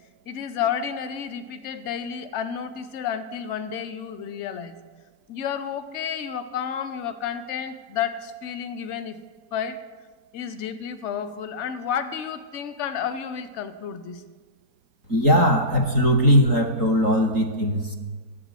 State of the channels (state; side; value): late; left; 3.8 ms